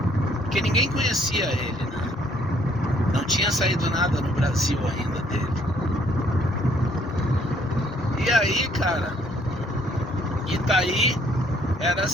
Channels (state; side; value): normal; both; correlation 0.64